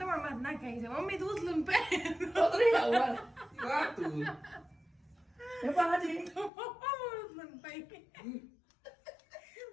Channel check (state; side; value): drops out; right; at 6.5 s